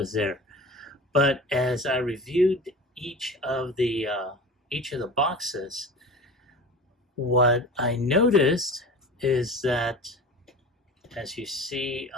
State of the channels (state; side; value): normal; both; correlation 0.35